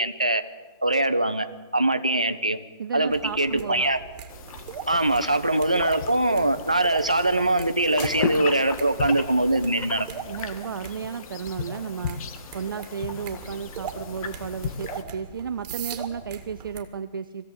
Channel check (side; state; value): both; inverted; correlation -0.68